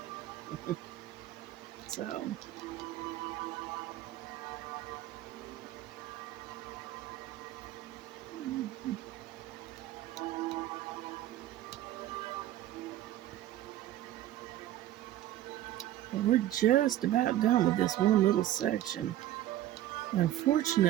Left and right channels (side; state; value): left; quieter; 13.5 dB